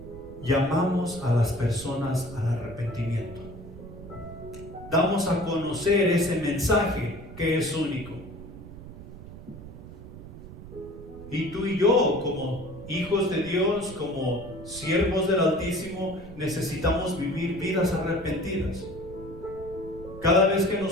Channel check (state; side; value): noise; right; rumble, 14 dB below the sound